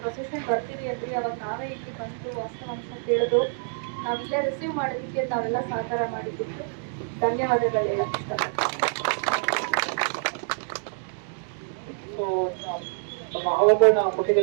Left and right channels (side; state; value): left; silent; digital silence